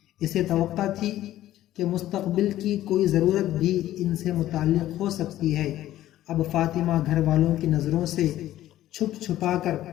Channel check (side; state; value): right; quieter; 13.7 dB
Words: اسے توقع تھی کہ مستقبل کی کوئی ضرورت بھی ان سے متعلق ہو سکتی ہے۔ اب فاطمہ گھر والوں کی نظروں سے چھپ چھپا کر